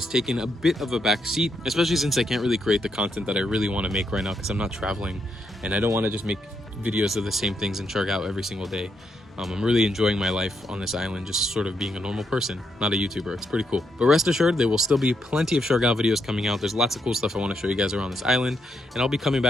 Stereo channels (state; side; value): normal; both; correlation 0.79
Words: taken a bit of a back seat, especially since I can't really create the content that I really want to make right now because I'm not traveling and I don't want to just make videos of the same things in Siargao every single day. I'm really enjoying my life on this island, just sort of being a normal person, not a YouTuber. It's pretty cool. But rest assured, there will still be plenty of Siargao videos coming out. There's lots of cool stuff I want to show you guys around this island, and I'll be coming